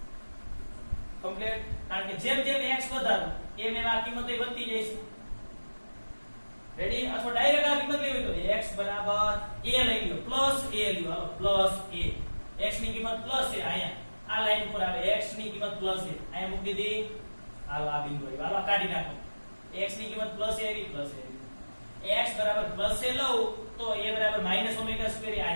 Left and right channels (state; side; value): inverted; both; correlation -1.00